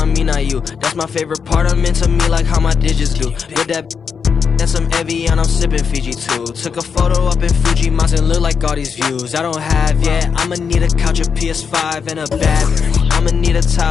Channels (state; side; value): quieter; right; 6.2 dB